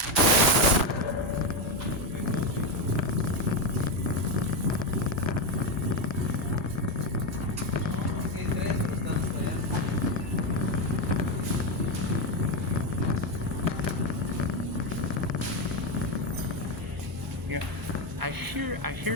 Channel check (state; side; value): normal; both; correlation 0.09